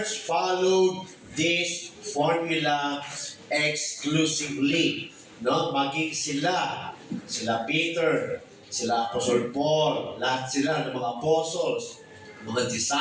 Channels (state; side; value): identical; both; correlation 1.00